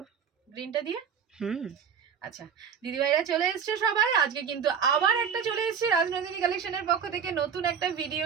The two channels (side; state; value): left; quieter; 7.1 dB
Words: গ্রিনটা দিয়ে। আচ্ছা দিদিভাইরা চলে এসছে সবাই। আজকে কিন্তু আবার একটা চলে এসেছি রাজনন্দিনী কালেকশনের পক্ষ থেকে নতুন একটা ভিডিও